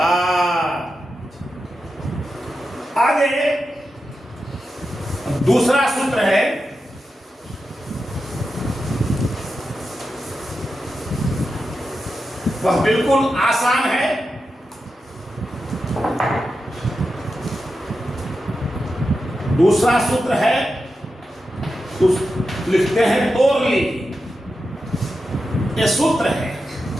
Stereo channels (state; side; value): normal; both; correlation 0.90